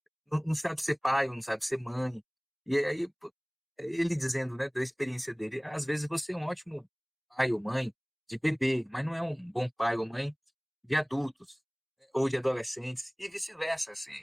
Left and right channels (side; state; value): both; identical; correlation 1.00